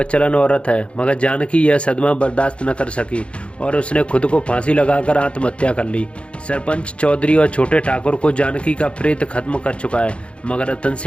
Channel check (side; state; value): right; late; 0.059 ms